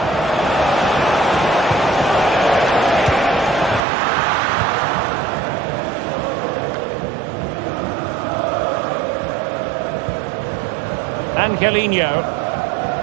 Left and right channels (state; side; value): drops out; left; at 3.8 s